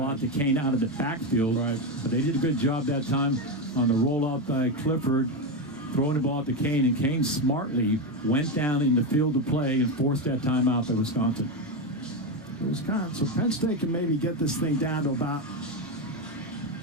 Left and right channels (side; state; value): both; normal; correlation 0.11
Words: out to Cain out of the backfield. Right. But they did a good job that time on the rollout by Clifford, throwing the ball out to Cain, and Cain smartly went down in the field of play and forced that timeout by Wisconsin. So Penn State can maybe get this thing down to about,